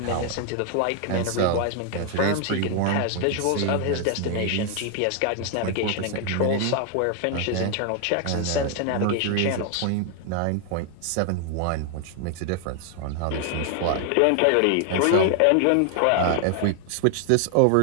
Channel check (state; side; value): different; both; correlation 0.00